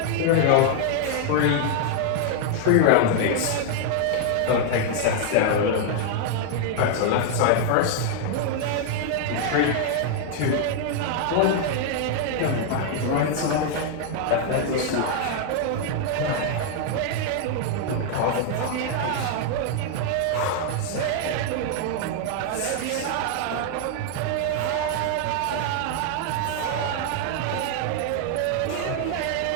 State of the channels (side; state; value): both; different; correlation 0.00